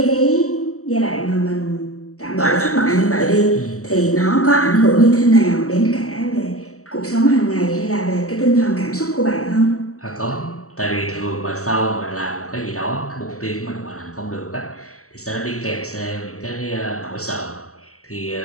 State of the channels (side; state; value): right; late; 0.65 ms